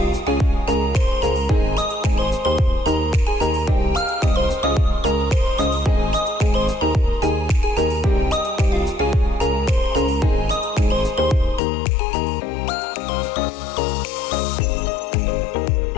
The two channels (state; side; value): drops out; right; at 11.6 s